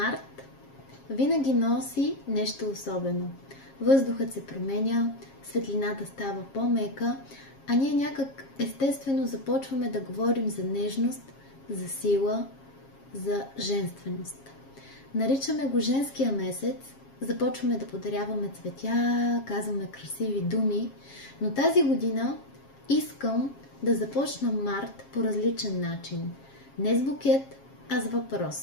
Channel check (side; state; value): right; late; 7.4 ms